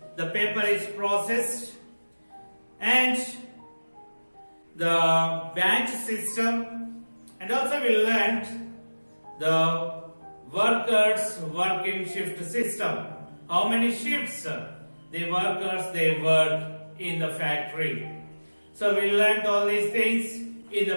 the paper is processed? And the batch system, and also we learned the workers working shift system. How many shifts the workers they work in the factory. So we learned all these things in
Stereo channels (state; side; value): inverted; both; correlation -1.00